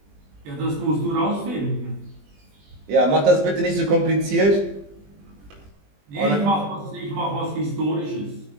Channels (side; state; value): left; late; 20 ms